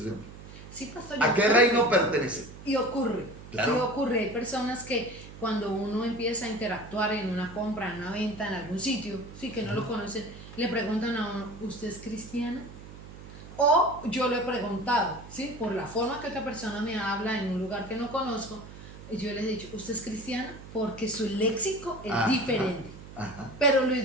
Sí, pastor. ¿A qué reino pertenece? Y ocurre. Claro. Sí, ocurre. Hay personas que cuando uno empieza a interactuar en una compra, en una venta, en algún sitio, sí, que no lo conocen, le preguntan a uno, ¿usted es cristiana? O yo lo he preguntado, ¿sí? Por la forma que otra persona me habla en un lugar que no conozco, yo les he dicho, ¿usted es cristiana? Porque su léxico es Ajá. diferente, Ajá. pero lo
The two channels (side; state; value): right; noise; hum, 15 dB below the sound